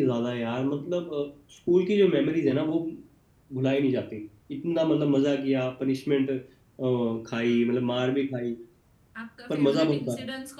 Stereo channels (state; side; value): identical; both; correlation 1.00